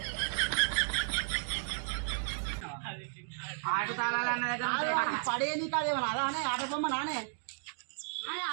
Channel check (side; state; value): left; silent; digital silence